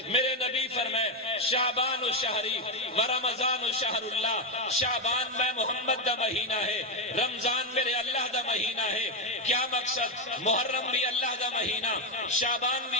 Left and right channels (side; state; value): both; normal; correlation 0.07